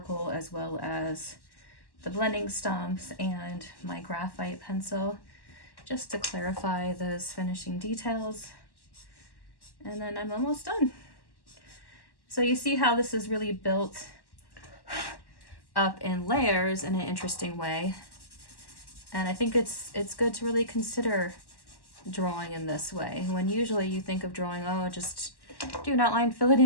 as well as the blending stumps and my graphite pencil, just to clarify those finishing details. And then I'm almost done. So you see how this is really built up in layers in an interesting way. And I think it's good to really consider drawing in this way, when usually you think of drawing, oh, just do an outline, fill it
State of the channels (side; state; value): right; late; 1.1 ms